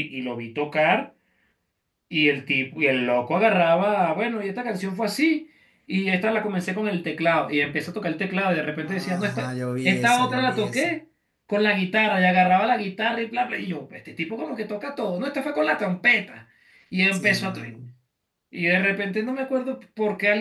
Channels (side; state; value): both; identical; correlation 1.00